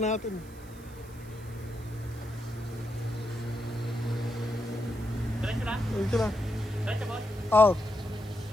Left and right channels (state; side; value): noise; right; hiss, 23 dB below the sound